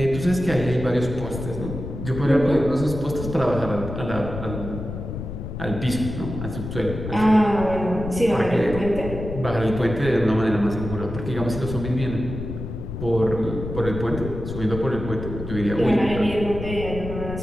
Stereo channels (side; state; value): left; noise; rumble, 7 dB below the sound